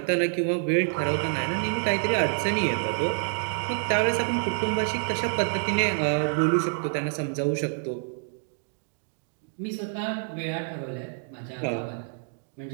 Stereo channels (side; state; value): left; silent; digital silence